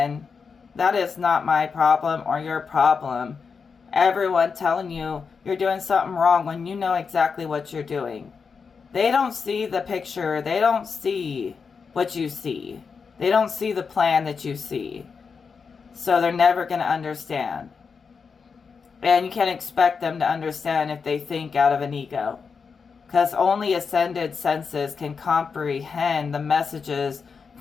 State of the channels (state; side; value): quieter; right; 5.5 dB